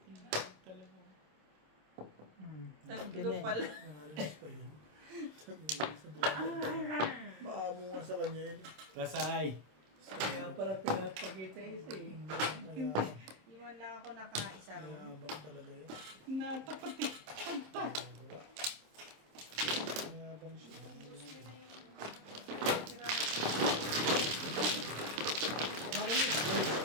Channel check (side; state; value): left; late; 26 ms